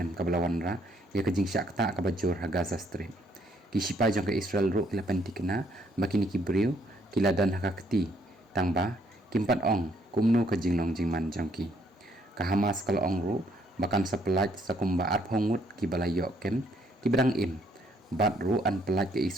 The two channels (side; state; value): both; normal; correlation 0.68